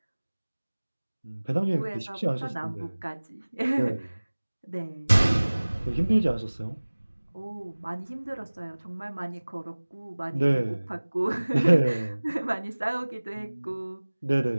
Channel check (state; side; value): inverted; both; correlation -1.00